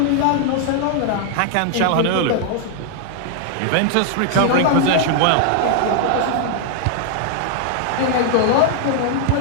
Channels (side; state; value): both; different; correlation 0.00